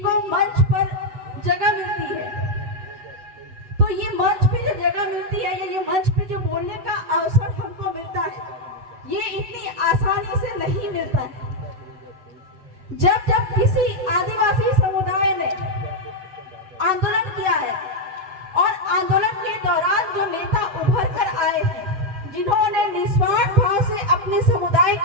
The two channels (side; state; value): left; late; 7.9 ms